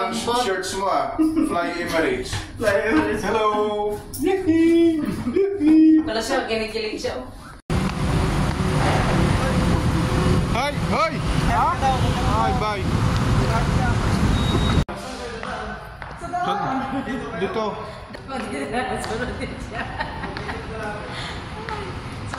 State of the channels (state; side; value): identical; both; correlation 1.00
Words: ng shirts mo Fly Emirates. Fly Emirates. Hello! Wala siya, ginigilig siya. Hi! Hi! Hi, bye! Dito. Sunod din siya.